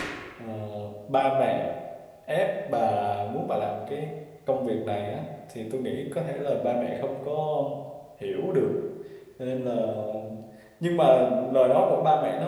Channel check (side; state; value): both; identical; correlation 1.00